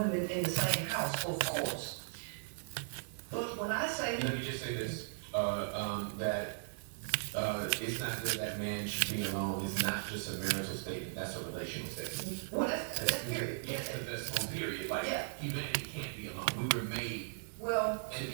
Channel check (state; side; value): silent; left; digital silence